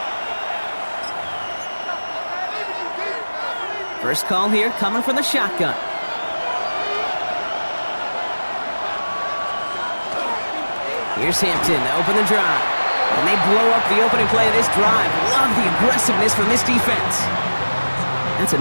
First call here coming from the shotgun. Here's Hampton to open the drive. And they blow up the opening play of this drive. Love the aggressiveness from this defense. That's a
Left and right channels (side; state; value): both; inverted; correlation -1.00